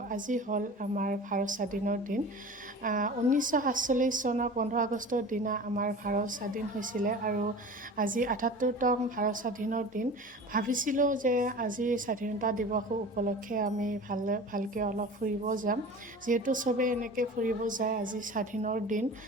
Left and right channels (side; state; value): both; normal; correlation 0.37